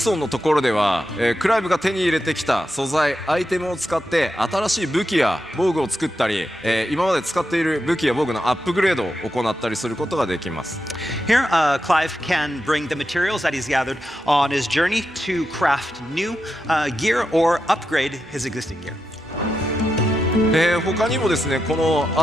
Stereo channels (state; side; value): normal; both; correlation 0.87